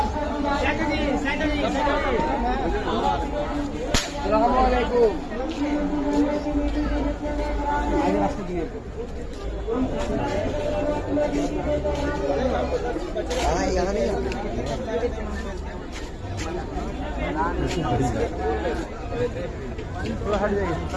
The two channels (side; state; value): both; identical; correlation 1.00